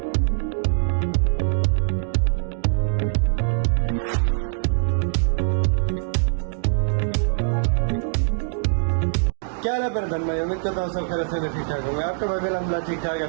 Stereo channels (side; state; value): left; silent; digital silence